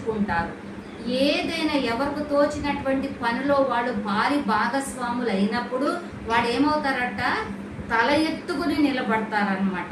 ఏదైనా ఎవరికి తోచినటువంటి పనిలో వాళ్ళు భారీ భాగస్వాములు అయినప్పుడు వాడు ఏమవుతారట? తల ఎత్తుకుని నిలబడతారనమాట.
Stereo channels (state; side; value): identical; both; correlation 1.00